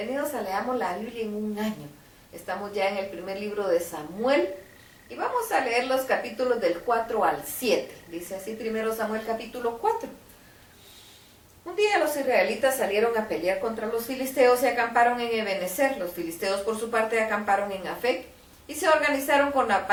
a Leamos la Biblia en un año. Estamos ya en el primer libro de Samuel y vamos a leer los capítulos del 4 al 7. Dice así primero Samuel capítulo 4. Un día los israelitas salieron a pelear contra los filisteos y acamparon en Ebenezer. Los filisteos por su parte acamparon en Afec y se organizaron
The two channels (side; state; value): both; identical; correlation 1.00